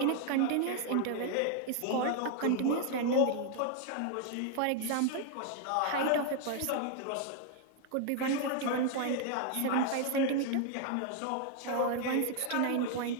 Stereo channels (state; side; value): different; both; correlation 0.00